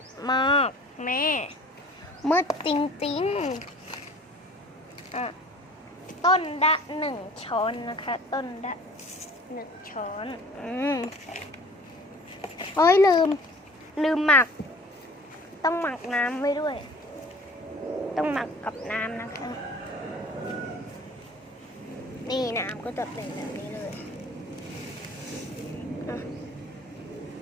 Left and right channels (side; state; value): both; normal; correlation 0.46